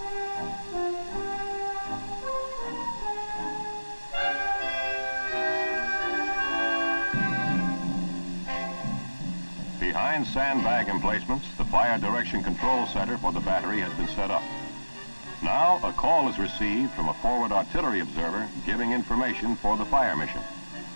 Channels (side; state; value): both; inverted; correlation -1.00